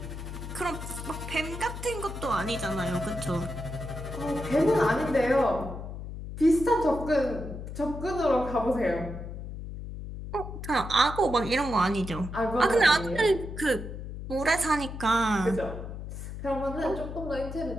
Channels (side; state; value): left; noise; hum, 8 dB below the sound